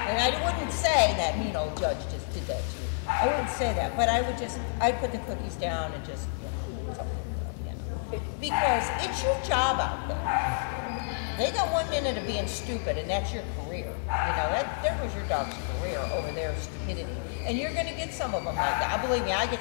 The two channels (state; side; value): silent; right; digital silence